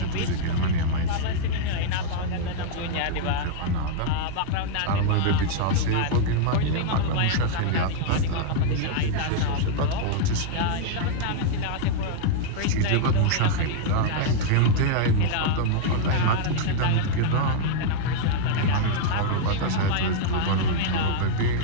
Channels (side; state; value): both; different; correlation -0.01